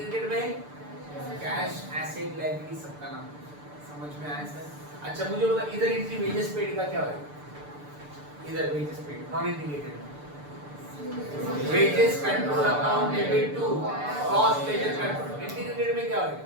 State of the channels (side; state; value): left; late; 6.8 ms